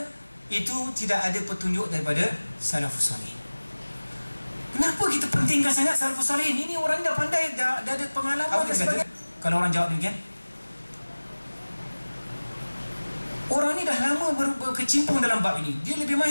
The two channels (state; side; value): inverted; both; correlation -1.00